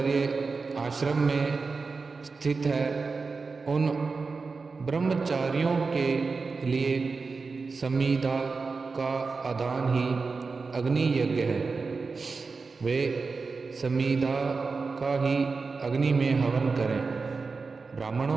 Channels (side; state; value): left; quieter; 4.4 dB